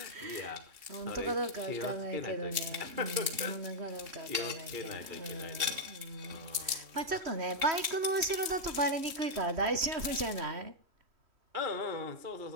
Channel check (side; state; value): left; late; 2.7 ms